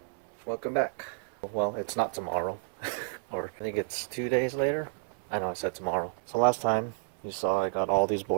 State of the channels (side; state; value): left; silent; digital silence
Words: Welcome back. Well, it's not tomorrow. Or I think it's 2 days later. I know I said tomorrow. So last time you saw I got all these